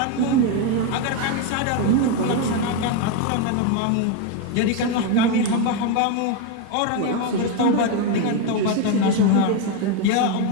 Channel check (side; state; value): both; different; correlation 0.02